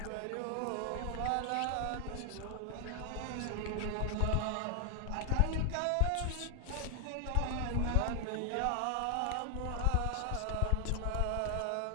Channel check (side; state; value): both; different; correlation 0.00